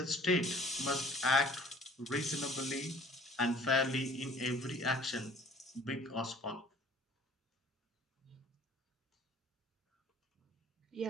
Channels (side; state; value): both; normal; correlation 0.52